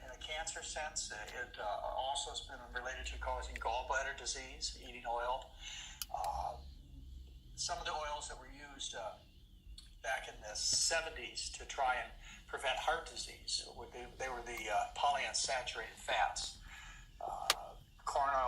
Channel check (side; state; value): both; identical; correlation 1.00